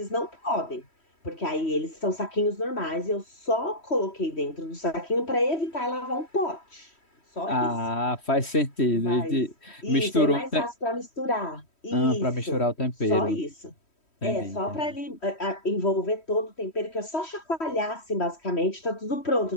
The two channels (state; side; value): late; right; 3.1 ms